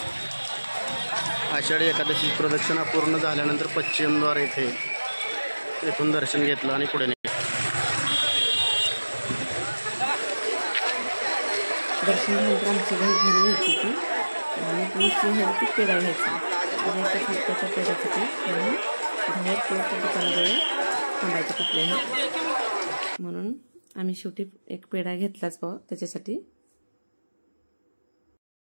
आषाढी एकादशी प्रदक्षिणा पूर्ण झाल्यानंतर पश्चिमद्वार येथून दर्शन घेतलं आणि पुढे दर्शन झाल्यानंतर आमची घरी घ्यायची होती आणि दुसरी घ्यायची पेढा घ्यायचा. त्या पेढ्यासाठी म्हणून बाहेर पोळच्या दुकानाजवळ थांबायचं कुठल्याही, म्हणून आम्ही शेवटी एक पेढा घेतलाच भाऊ त्याच्यासाठी.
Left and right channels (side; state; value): both; inverted; correlation -1.00